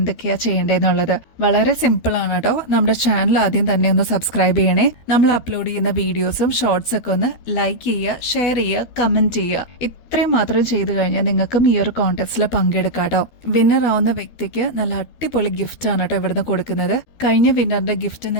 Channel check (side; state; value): right; late; 13 ms